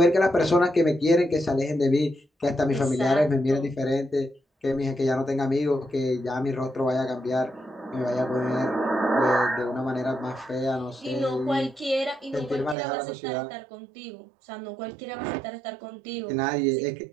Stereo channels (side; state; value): left; drops out; at 12.8 s